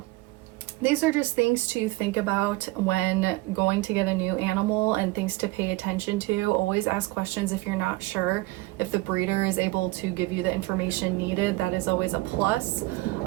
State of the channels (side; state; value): left; quieter; 20.6 dB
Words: these are just things to think about when going to get a new animal, and things to pay attention to. Always ask questions if you're not sure. If the breeder is able to give you the information needed, that is always a plus.